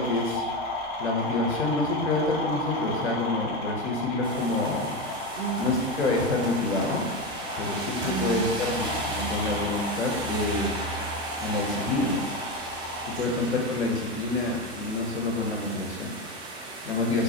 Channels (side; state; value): both; normal; correlation 0.17